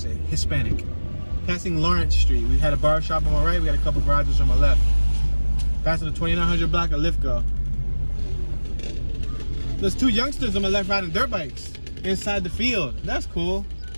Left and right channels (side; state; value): both; inverted; correlation -1.00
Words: Hispanic. Passing Lawrence Street, we had a bar shop on my right, we got a couple garages on my left. Passing the 2900 block of Lithgow. There's 2 youngsters on my left riding dirt bikes inside the field. That's cool.